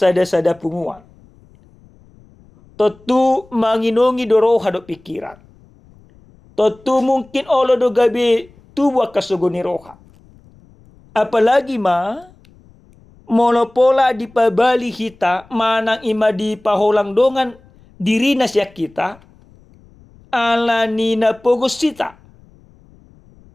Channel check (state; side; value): noise; left; rumble, 28 dB below the sound